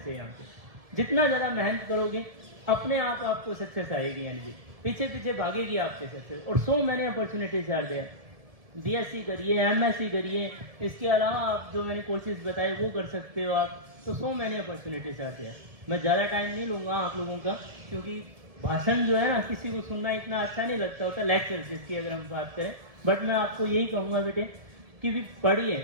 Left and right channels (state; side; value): late; left; 1.7 ms